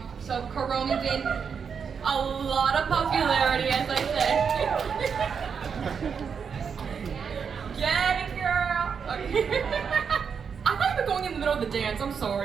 So Kuromi gained a lot of popularity, as I said. Get it, girl. Okay. I thought you were going in the middle of the dance. I'm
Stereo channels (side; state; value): left; quieter; 6.5 dB